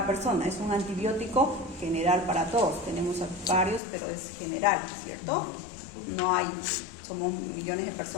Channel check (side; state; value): right; drops out; at 3.8 s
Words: persona, es un antibiótico general para todos. Tenemos varios, pero es general, ¿cierto? No hay, somos millones de